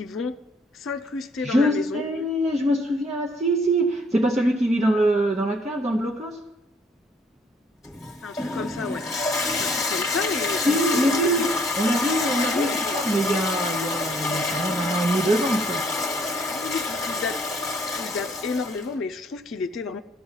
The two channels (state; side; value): normal; both; correlation 0.63